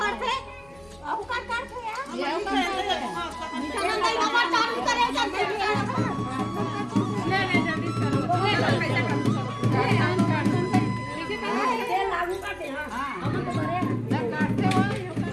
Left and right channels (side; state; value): left; noise; hum, 27 dB below the sound